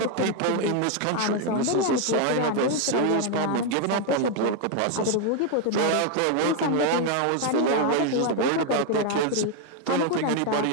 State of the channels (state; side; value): different; both; correlation 0.01